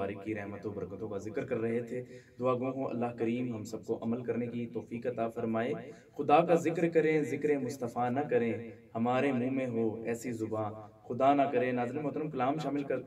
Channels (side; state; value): both; identical; correlation 1.00